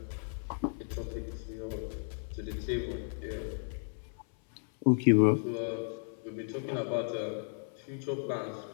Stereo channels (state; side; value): silent; right; 55 dB below the other